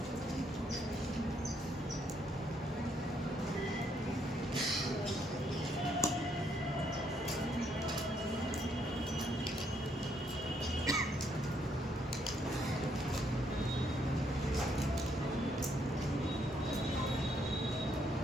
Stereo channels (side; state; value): both; normal; correlation 0.72